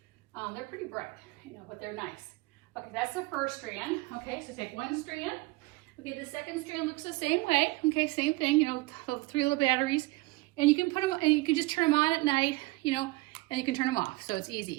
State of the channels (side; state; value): left; quieter; 22.4 dB